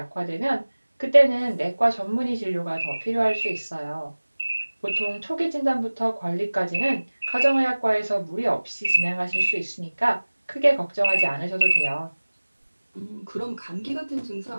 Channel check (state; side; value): inverted; both; correlation -1.00